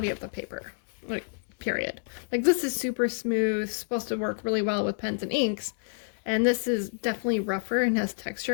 of the paper, like, period. Like, this is super smooth, supposed to work really well with pens and inks, and this is definitely rougher and has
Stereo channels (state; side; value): silent; right; digital silence